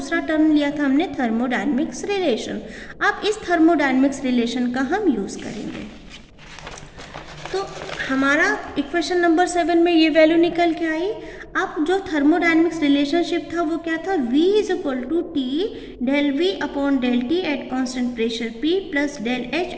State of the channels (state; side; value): identical; both; correlation 1.00